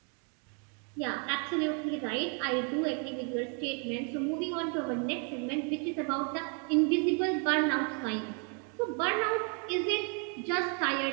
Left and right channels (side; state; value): left; quieter; 38.6 dB